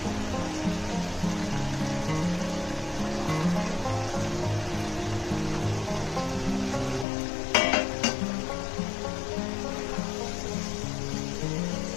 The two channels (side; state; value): right; drops out; at 7.1 s